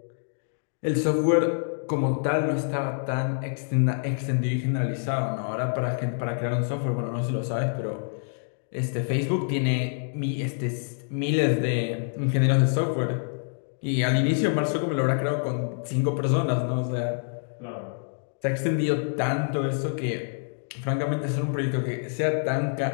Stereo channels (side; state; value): right; silent; digital silence